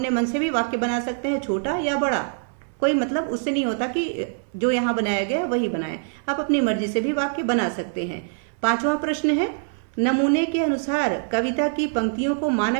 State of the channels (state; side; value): silent; left; 63 dB below the other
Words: मन से भी वाक्य बना सकते हैं, छोटा या बड़ा, कोई मतलब उससे नहीं होता कि जो यहाँ बनाया गया वही बनाए, आप अपनी मर्जी से भी वाक्य बना सकते हैं। पांचवा प्रश्न है, नमूने के अनुसार कविता की पंक्तियों को